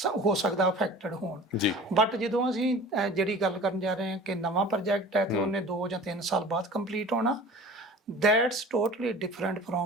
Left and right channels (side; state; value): both; normal; correlation 0.41